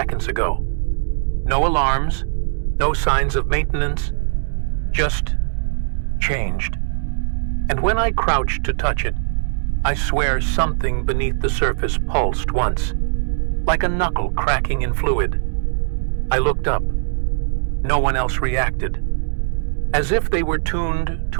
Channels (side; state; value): left; silent; 66 dB below the other